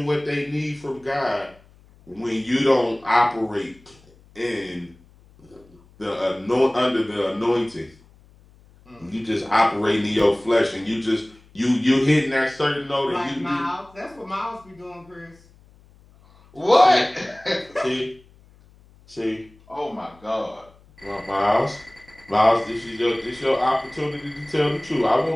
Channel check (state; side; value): noise; left; hum, 28 dB below the sound